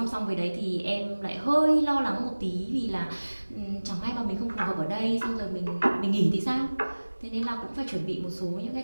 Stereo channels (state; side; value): inverted; both; correlation -1.00